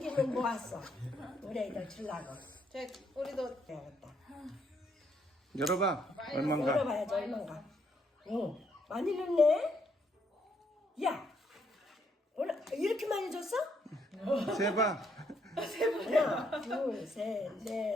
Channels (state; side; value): normal; both; correlation 0.72